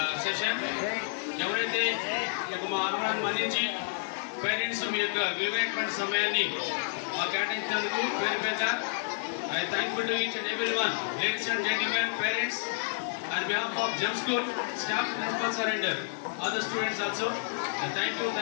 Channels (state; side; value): silent; right; 58 dB below the other